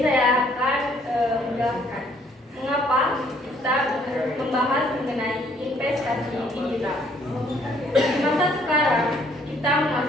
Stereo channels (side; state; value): both; normal; correlation 0.64